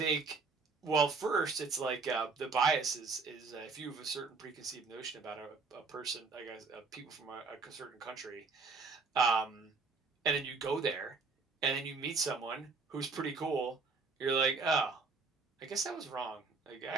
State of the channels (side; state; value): left; quieter; 4.4 dB